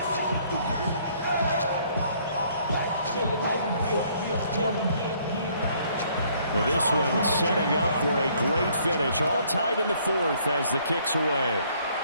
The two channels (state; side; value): inverted; both; correlation -0.63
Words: Now this one setting up for a great finish. All tied in the 4th as the kick's away.